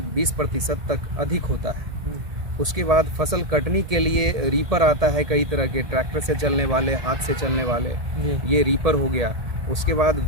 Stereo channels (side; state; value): left; late; 1.7 ms